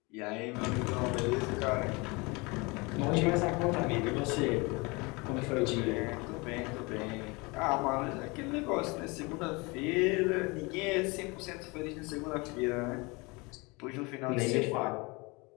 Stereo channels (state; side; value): quieter; right; 26.7 dB